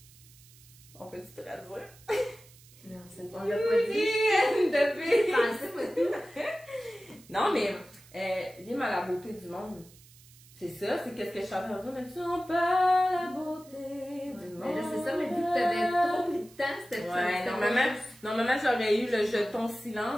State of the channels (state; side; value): noise; right; hiss, 24 dB below the sound